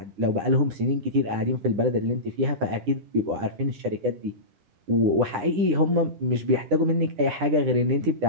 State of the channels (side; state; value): left; late; 9.9 ms